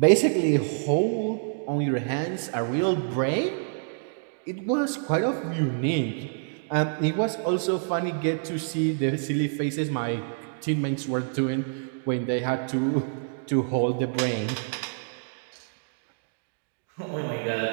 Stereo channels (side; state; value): left; silent; digital silence